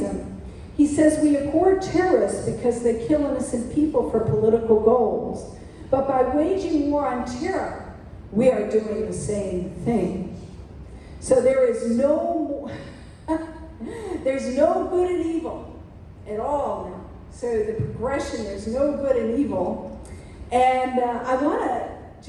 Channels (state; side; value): identical; both; correlation 1.00